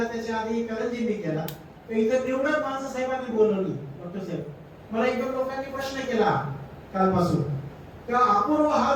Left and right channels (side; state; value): both; identical; correlation 1.00